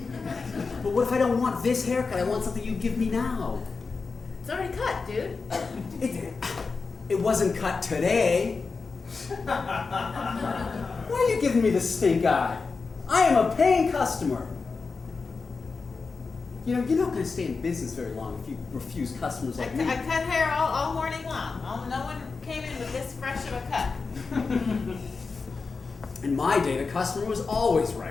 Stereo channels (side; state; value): right; quieter; 4.5 dB